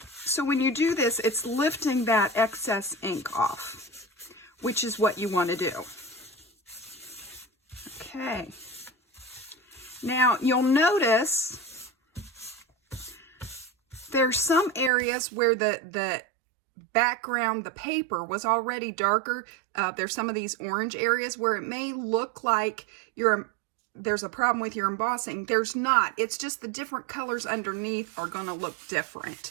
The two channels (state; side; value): drops out; left; at 14.9 s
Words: So when you do this, it's lifting that excess ink off, which is what you want to do. Okay. Now, you'll notice there's some areas where the background, the paper, was already darker. There's some of these orange areas where it may look like there's a problem with your embossing. There's not. It's just the different colors underneath are going to look different.